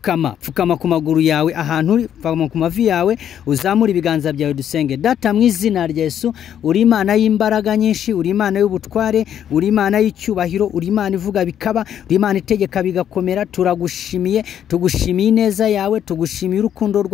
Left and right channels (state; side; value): quieter; right; 9.8 dB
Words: ku maguru yawe, ahantu uri pfukama ku mavi yawe, uzamura ibiganza byawe dusenge. Data mu izina rya Yesu, uri Imana y'imbaraga nyinshi, uri Imana y'ubutware, uri Imana y'icyubahiro, uri Imana ivuga bikaba, uri Imana itegeka bigakomera. Turagushimiye, tugushimiye ineza yawe, tugushimiye urukundo